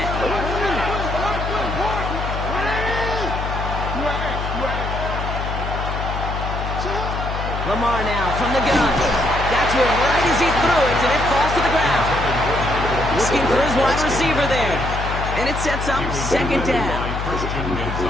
Lamar now from the gun. That's it right as he threw it, and it falls to the ground. Looking for his wide receiver there. And it sets up 2nd down.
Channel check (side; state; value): left; noise; hum, 4 dB below the sound